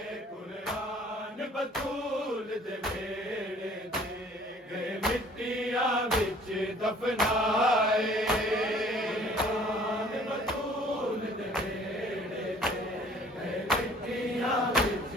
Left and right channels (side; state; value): both; normal; correlation 0.54